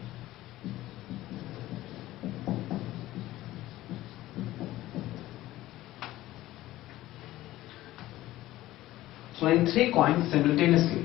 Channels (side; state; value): right; quieter; 15.9 dB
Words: Throwing 3 coins simultaneously.